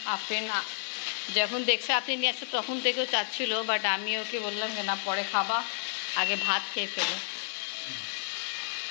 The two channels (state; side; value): silent; right; 57 dB below the other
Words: আফরিন যখন দেখছে আপনি নিয়ে আসছে তখন থেকেও চাচ্ছিল, বাট আমি ওকে বললাম যে না, পরে খাবা, আগে ভাত খেয়ে ফেলো।